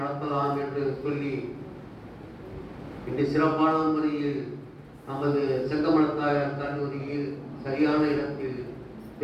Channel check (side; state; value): both; identical; correlation 1.00